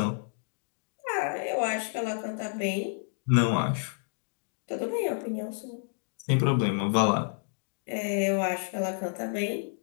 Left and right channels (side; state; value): right; silent; 58 dB below the other